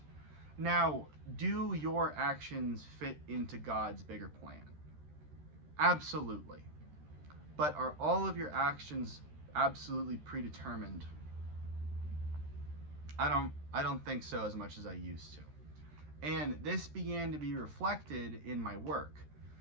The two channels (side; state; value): left; late; 13 ms